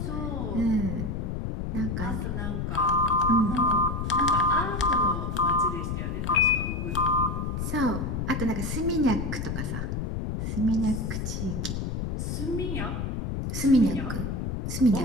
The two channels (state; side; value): noise; left; rumble, 3 dB below the sound